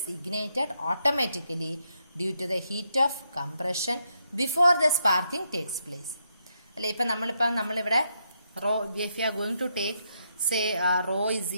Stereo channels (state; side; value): inverted; both; correlation -0.78